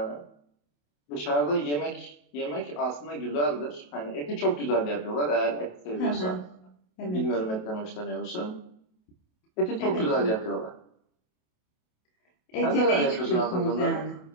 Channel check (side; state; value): right; late; 28 ms